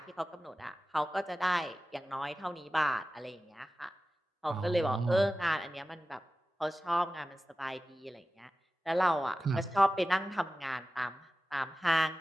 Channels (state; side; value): normal; both; correlation 0.95